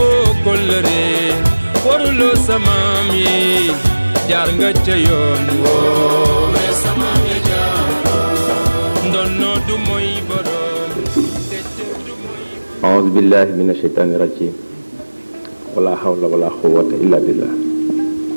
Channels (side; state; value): both; inverted; correlation -1.00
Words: kollëre waruloo samaam yi jaar nga ca yoon woo samaam yi jaaroon ndonnoo du mooy borom. a'uuzu billahi mina shaytaani rajiim wala hawla wala quwwata illa billah.